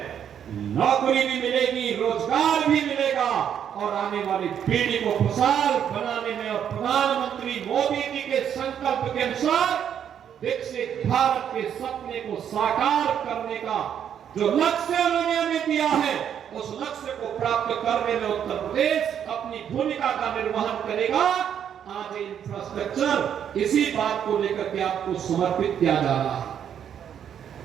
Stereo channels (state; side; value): quieter; left; 8.9 dB